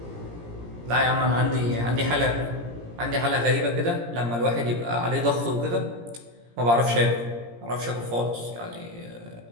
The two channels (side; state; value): left; late; 17 ms